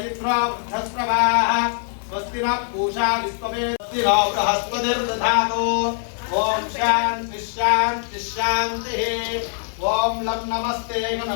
इन्द्रो वृद्धस्रवाः स्वस्ति नः पूषा विश्ववेद स्वस्ति नो बृहस्पतिर्दधातु ओम शांति शांति शांतिः ओम लं नमस्ते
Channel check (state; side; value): silent; right; 64 dB below the other